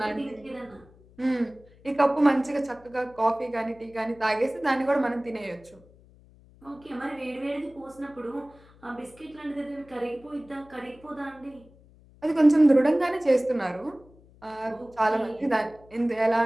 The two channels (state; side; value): noise; left; hum, 26 dB below the sound